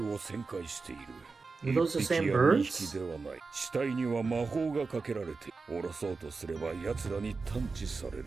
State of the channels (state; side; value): quieter; left; 4.3 dB